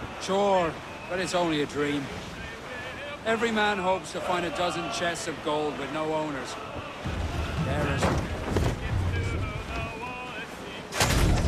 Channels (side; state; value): both; identical; correlation 1.00